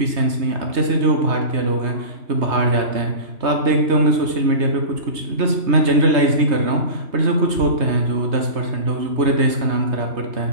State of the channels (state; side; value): late; left; 3.2 ms